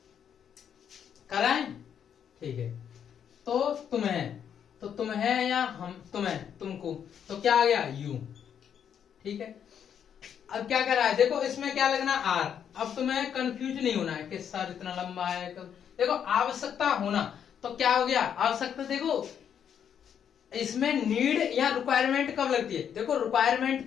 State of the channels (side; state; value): right; quieter; 8.4 dB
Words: कराएं, ठीक है। तो तुम है या हम, तुम्हें, तुमको, तो क्या आ गया यू, ठीक है। अब क्या कर रहा है, देखो इसमें क्या लगना आर। अब तुम्हें कंफ्यूज नहीं होना है कि सर इतना लंबा है। देखो आवश्यकता होना, तो क्या हो गया आवश्यकता। देखो इसमें नीड या रिक्वायरमेंट कब लगती है, देखो